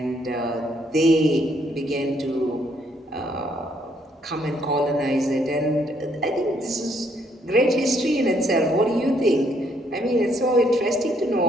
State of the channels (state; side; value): normal; both; correlation 0.70